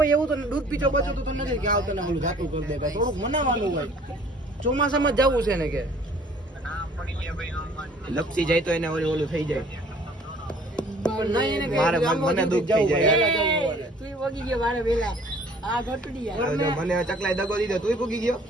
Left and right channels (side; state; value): both; normal; correlation 0.54